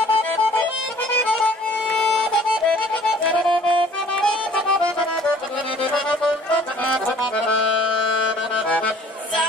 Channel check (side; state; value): both; normal; correlation 0.53